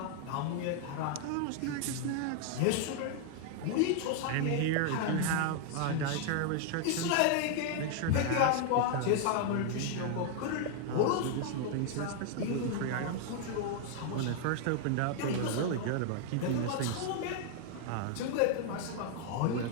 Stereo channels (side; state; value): both; different; correlation 0.00